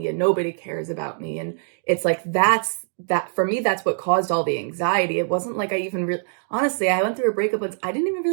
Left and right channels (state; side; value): silent; left; digital silence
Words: and nobody cares about me. And it's that for me, that's what caused all the anxiety. It wasn't I even honestly, I went through a breakup once. I didn't even